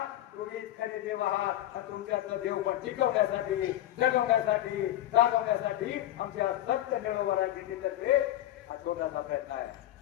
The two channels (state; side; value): quieter; right; 13.6 dB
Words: तुम्हीच खरे देव आहात आणि तुमच्यातलं देव पण टिकवण्यासाठी, जगवण्यासाठी, जागवण्यासाठी आमच्या सत्य मिळवणाऱ्या जिल्ह्यातर्फे हा छोटासा प्रयत्न आहे.